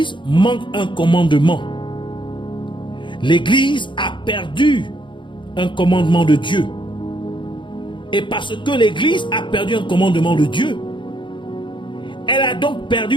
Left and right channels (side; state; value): right; late; 0.23 ms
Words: manque un commandement. L'Église a perdu un commandement de Dieu. Et parce que l'Église a perdu un commandement de Dieu, elle a donc